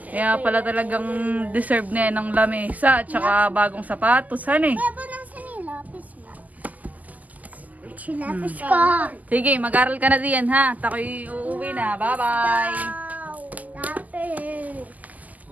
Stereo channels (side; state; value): left; late; 0.079 ms